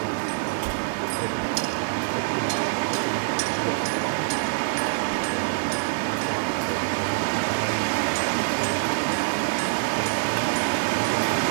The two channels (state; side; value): quieter; left; 35.2 dB